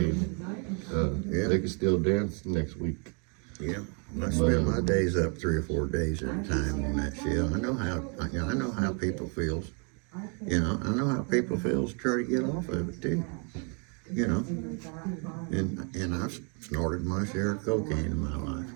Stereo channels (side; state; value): left; quieter; 37.4 dB